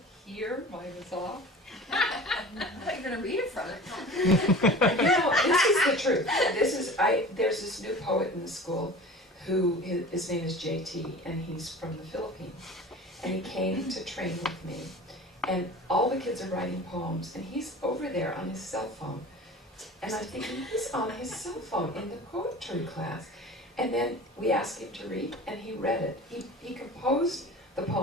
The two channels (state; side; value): normal; both; correlation 0.39